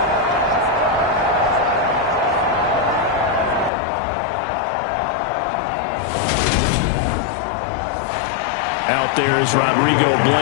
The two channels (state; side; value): drops out; right; at 3.7 s